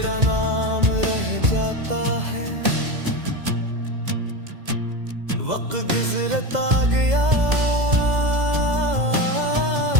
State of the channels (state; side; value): late; left; 2.0 ms